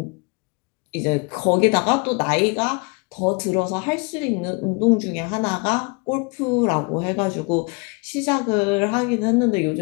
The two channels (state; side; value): quieter; right; 30.9 dB